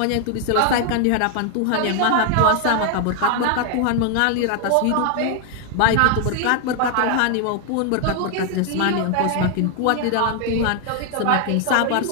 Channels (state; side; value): different; both; correlation 0.00